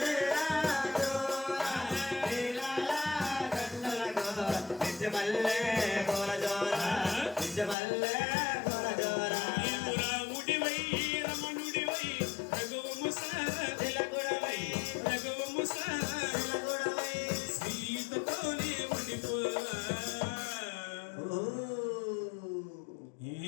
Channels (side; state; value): right; drops out; at 7.8 s